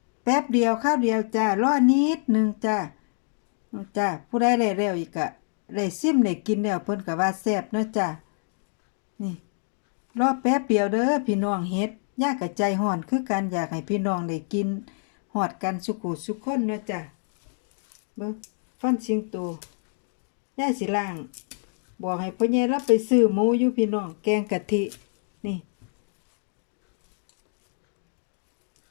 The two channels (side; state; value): right; silent; digital silence